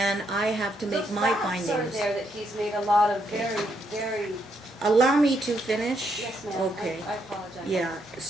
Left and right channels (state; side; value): normal; both; correlation 0.76